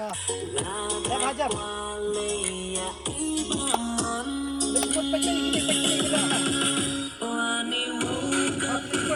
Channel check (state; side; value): identical; both; correlation 1.00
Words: Dah hajam. Lekut pakai gini dah.